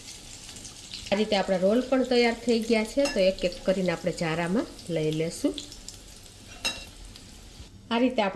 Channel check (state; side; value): identical; both; correlation 1.00